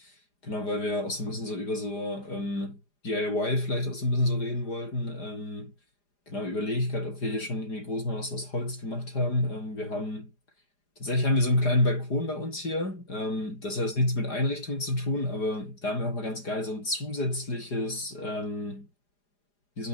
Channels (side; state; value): right; late; 4.9 ms